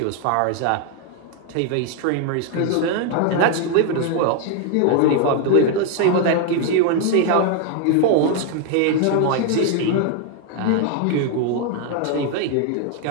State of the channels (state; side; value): different; both; correlation 0.01